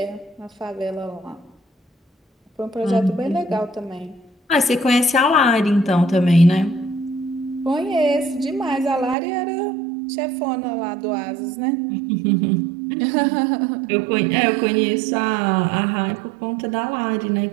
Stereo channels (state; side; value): drops out; left; at 9.2 s